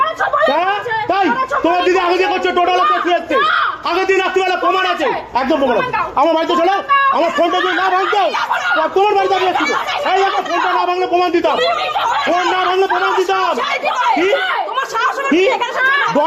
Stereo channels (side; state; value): both; identical; correlation 1.00